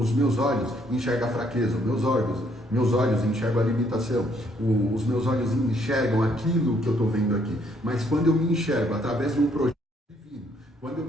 meus olhos enxergam a fraqueza, meus olhos enxergam a limitação, os meus olhos enxergam aquilo que eu estou vendo aqui. Mas quando eu me enxergo através de um projeto divino, quando eu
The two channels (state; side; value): normal; both; correlation 0.68